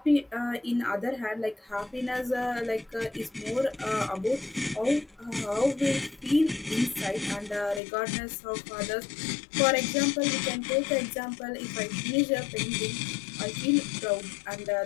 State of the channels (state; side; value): drops out; right; at 7.8 s